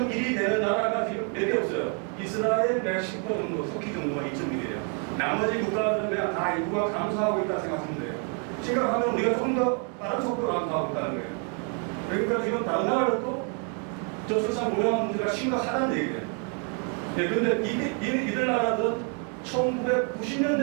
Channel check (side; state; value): left; quieter; 39.7 dB